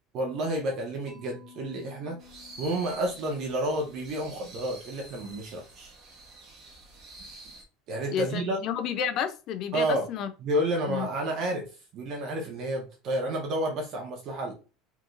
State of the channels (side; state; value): both; normal; correlation 0.33